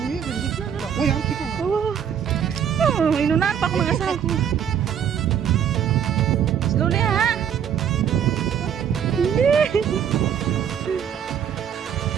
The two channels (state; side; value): quieter; left; 8.6 dB